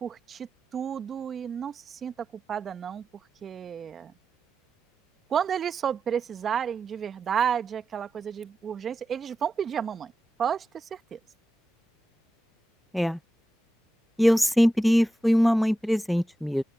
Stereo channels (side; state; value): both; normal; correlation 0.93